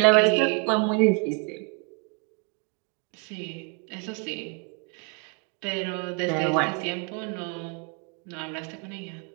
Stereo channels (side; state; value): left; quieter; 33.6 dB